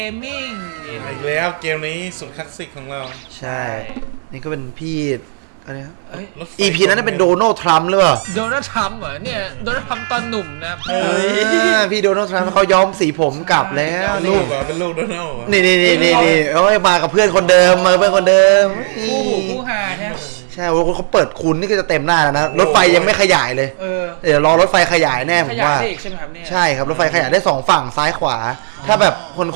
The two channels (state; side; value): silent; left; 69 dB below the other